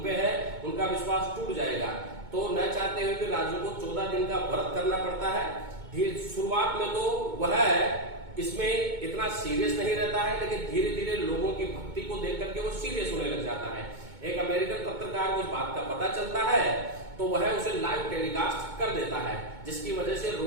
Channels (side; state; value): left; late; 2.2 ms